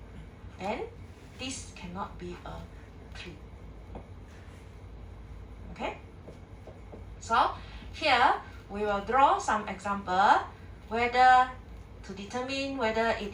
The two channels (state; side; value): identical; both; correlation 1.00